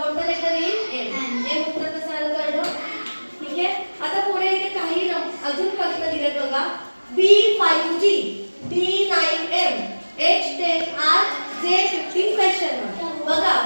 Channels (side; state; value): both; inverted; correlation -1.00